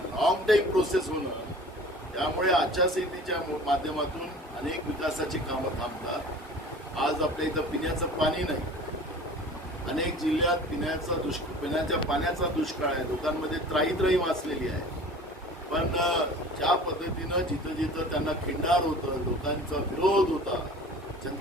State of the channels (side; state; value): both; normal; correlation 0.43